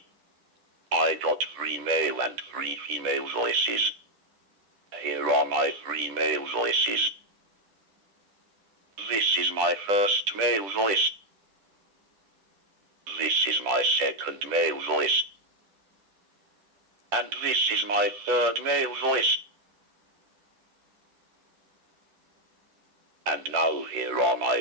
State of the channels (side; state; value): left; late; 10 ms